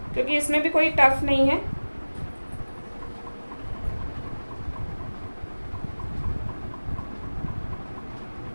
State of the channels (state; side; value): inverted; both; correlation -1.00